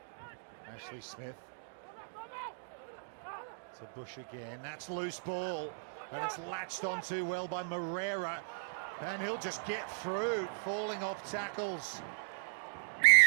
Ashley Smith to Bush again. That's loose ball, and it's latched on too well by Moreira, and he'll just get through, falling off tackles.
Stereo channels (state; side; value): silent; left; digital silence